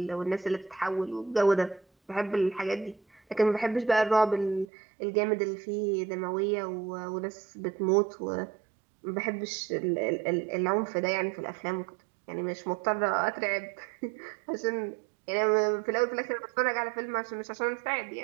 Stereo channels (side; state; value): left; drops out; at 4.7 s